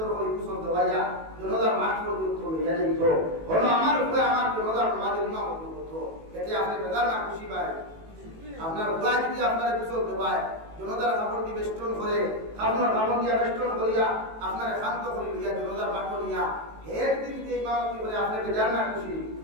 করে কুশল দেওয়াইয়া জনতার মাঠ পর্যন্ত লইয়া যাইত হলো আমার উপরে আমার জনতার সমাজের ইমাম করতো এতে আপনি বেদার না খুশি পায় আপনার উপায় যদি আপনার কুশল দেওয়ায় জনতার কাপড় দিয়ে বেষ্টন করে আপনার কাপড় দিয়া বেষ্টন করিয়া আপনার শান্ত করে লইয়া জনতার মাঠ নিয়া হের দিন যে ইমামতি করে আপনি বেদার না খুশি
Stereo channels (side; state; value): left; late; 18 ms